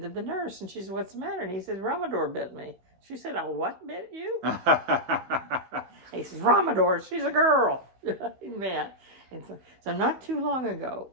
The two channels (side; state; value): left; late; 16 ms